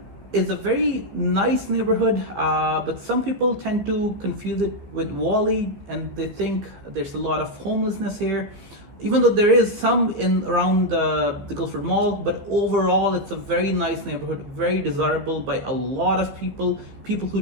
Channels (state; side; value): late; left; 15 ms